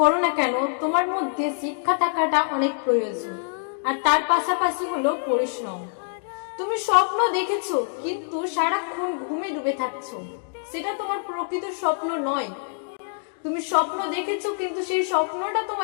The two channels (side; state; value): right; silent; digital silence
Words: না কেন, তোমার মধ্যে শিক্ষা থাকাটা অনেক প্রয়োজন, আর তার পাশাপাশি হলো পরিশ্রম। তুমি স্বপ্ন দেখেছো কিন্তু সারাক্ষণ ঘুমে ডুবে থাকছো, সেটা তোমার প্রকৃত স্বপ্ন নয়। তুমি স্বপ্ন দেখেছো কিন্তু সেই স্বপ্নটা